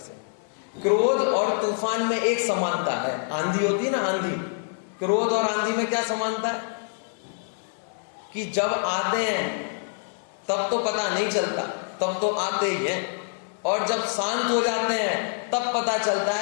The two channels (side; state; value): right; silent; 61 dB below the other